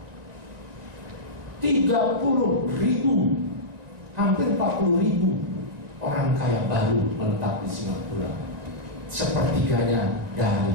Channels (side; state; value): left; late; 1.9 ms